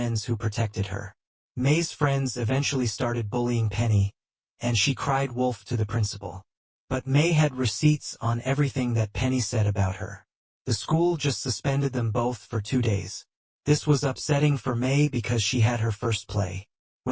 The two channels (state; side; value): identical; both; correlation 1.00